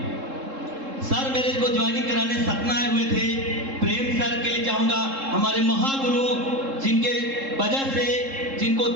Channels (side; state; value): left; late; 3.7 ms